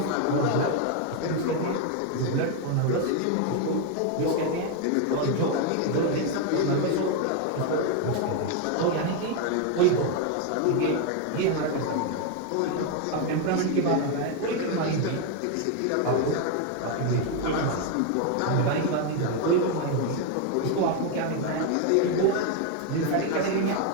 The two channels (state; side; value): different; both; correlation 0.01